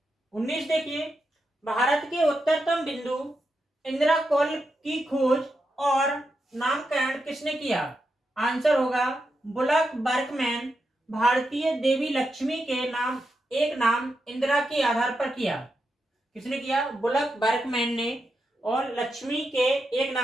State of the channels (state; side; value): normal; both; correlation 0.86